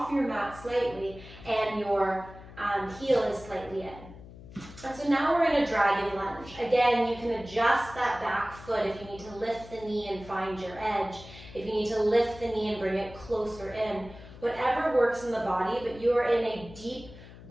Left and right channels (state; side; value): noise; left; hum, 17 dB below the sound